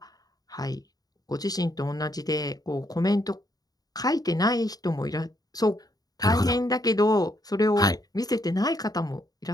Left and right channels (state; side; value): late; right; 0.18 ms